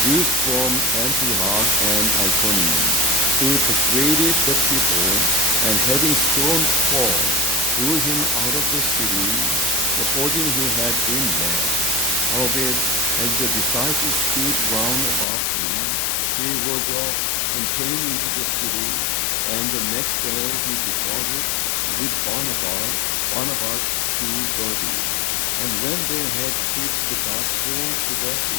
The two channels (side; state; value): right; drops out; at 15.2 s